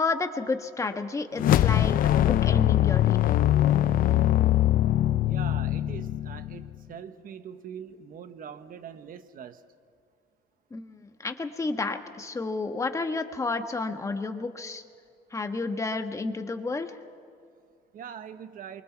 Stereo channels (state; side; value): quieter; right; 9.1 dB